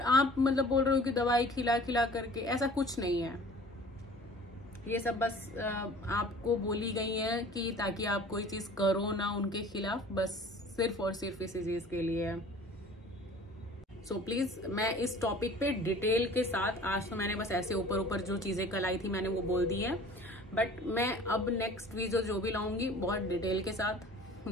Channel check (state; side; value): normal; both; correlation 0.46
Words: आप मतलब बोल रहे हो कि दवाई खिला खिला करके, ऐसा कुछ नहीं है। ये सब बस आपको बोली गई है कि ताकि आप कोई चीज करो ना उनके खिलाफ, बस सिर्फ और सिर्फ इसी चीज के लिए है। सो प्लीज, मैं इस टॉपिक पे डिटेल के साथ, आज तो मैंने बस ऐसे ऊपर ऊपर जो चीजें कल आई थी मैंने वो बोल दी है, बट मैं अब नेक्स्ट वीडियो जो भी लाऊंगी बहुत डिटेल के साथ,